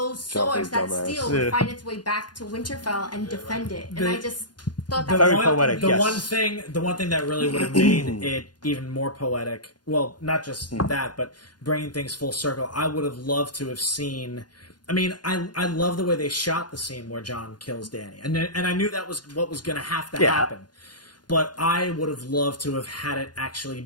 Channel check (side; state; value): right; late; 0.70 ms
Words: swords, that dumbass. steel, would find its way back to Winterfell and defend it. And I just thought that Very was poetic, The yes. one thing that really would have made it even more poetic. Well, not just that, but bringing things full circle. I would have loved to have seen. I mean, I love the way they shot the scene where Jon kills Dany, and I knew that was what was going to have to happen. But I would have loved to have had it actually